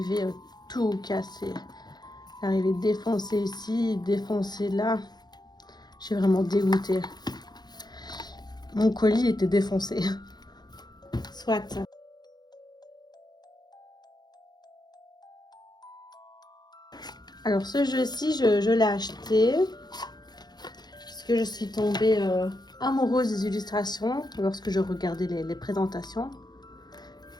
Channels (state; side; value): late; right; 0.20 ms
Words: tout cassé. Il est arrivé défoncé ici, défoncé là. Je suis vraiment dégoûtée. Mon colis était défoncé. Soit. Alors ce jeu-ci, je l'ai acheté parce que je suis tombée amoureuse des illustrations lorsque je regardais les présentations.